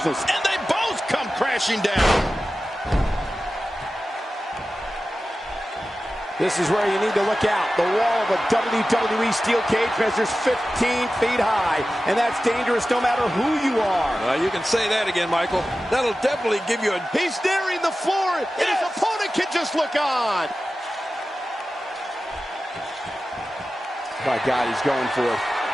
And they both come crashing down. This is where you need to look out. The wall of a WWE steel cage measures 15 feet high, and that's dangerous no matter who you are. You can say that again, Michael. That'll definitely give you a... He's nearing the floor, and his opponent can just look on. My God, he's going for it.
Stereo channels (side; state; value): both; normal; correlation 0.94